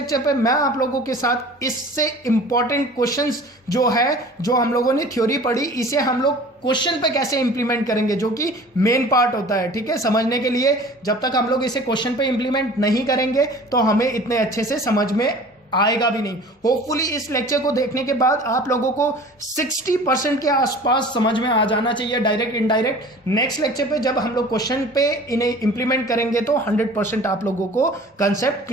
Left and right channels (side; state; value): both; normal; correlation 0.44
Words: पे मैं आप लोगों के साथ इससे इंपॉर्टेंट क्वेश्चंस जो है, जो हम लोगों ने थ्योरी पढ़ी, इसे हम लोग क्वेश्चन पे कैसे इंप्लीमेंट करेंगे, जो कि मेन पार्ट होता है। ठीक है, समझने के लिए जब तक हम लोग इसे क्वेश्चन पे इंप्लीमेंट नहीं करेंगे तो हमें इतने अच्छे से समझ में आएगा भी नहीं। होपफुली इस लेक्चर को देखने के बाद आप लोगों को 60% के आसपास समझ में आ जाना चाहिए, डायरेक्ट इनडायरेक्ट। नेक्स्ट लेक्चर पे जब हम लोग क्वेश्चन पे इन्हें इंप्लीमेंट करेंगे तो 100% आप लोगों को कंसेप्ट